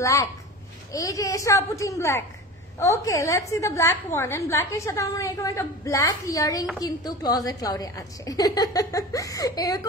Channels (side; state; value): both; normal; correlation 0.33